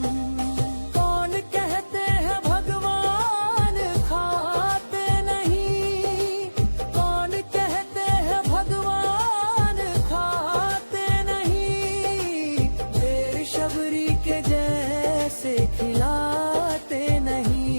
कौन कहते हैं भगवान खाते नहीं कौन कहते हैं भगवान खाते नहीं देर शबरी के जैसे खिलाते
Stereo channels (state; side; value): inverted; both; correlation -1.00